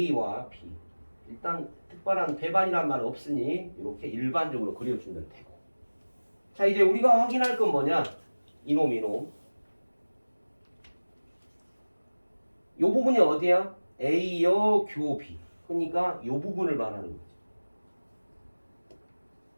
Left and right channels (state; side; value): inverted; both; correlation -1.00